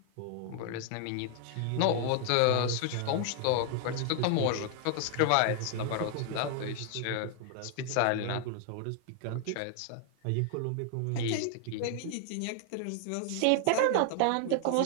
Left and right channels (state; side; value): different; both; correlation 0.00